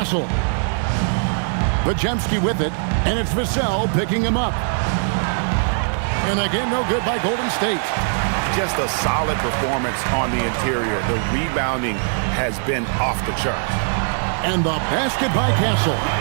Podziemski with it, and it's Vassell picking him up. And again, no good by Golden State. Just a solid performance on the interior. The rebounding has been off the charts. And the basket by Castle.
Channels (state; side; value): silent; left; 65 dB below the other